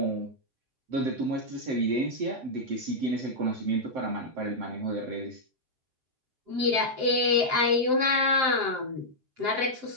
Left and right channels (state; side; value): late; left; 7.7 ms